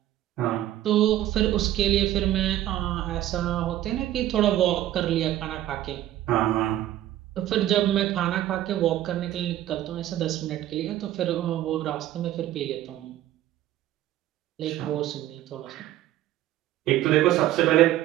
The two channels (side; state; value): left; quieter; 13.5 dB